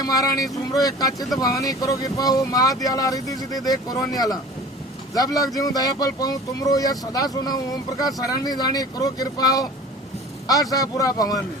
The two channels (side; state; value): both; normal; correlation 0.42